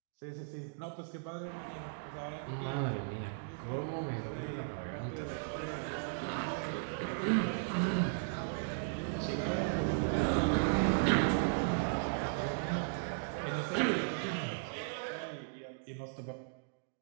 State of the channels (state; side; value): silent; left; digital silence